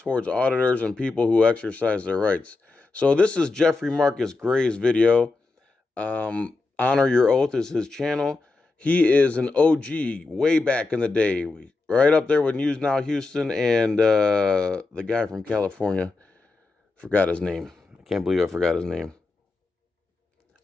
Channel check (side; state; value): right; quieter; 3.6 dB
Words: auditors and people who exercise their rights. So this is Jeffrey Marcus Gray's video. Honor Your Oath is his channel. He is an OG way back in the day. Right up there with News Now Houston and the guy from California. Forgot his name. I can't believe I forgot his name.